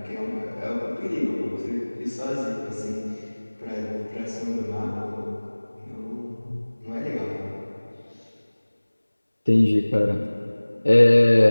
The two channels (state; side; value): inverted; both; correlation -1.00